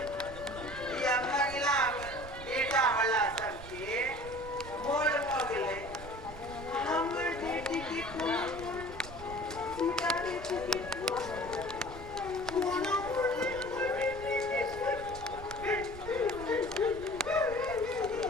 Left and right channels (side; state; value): right; noise; rumble, 14 dB below the sound